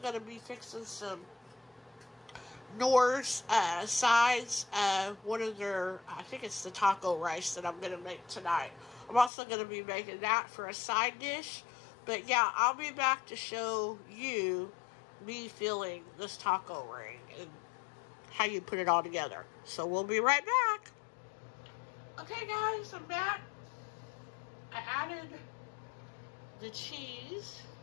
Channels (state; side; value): drops out; right; at 9.3 s